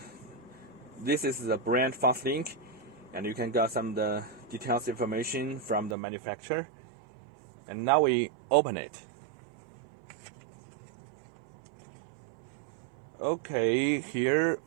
this is the brand FastLink, and you can get some of the details information from the manufacturer. And now we open it. Okay, here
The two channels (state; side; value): drops out; left; at 6.0 s